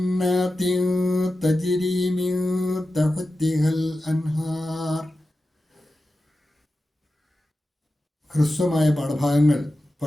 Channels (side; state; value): both; normal; correlation 0.92